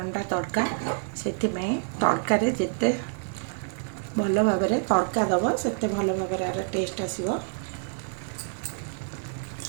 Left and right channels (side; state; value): left; silent; 60 dB below the other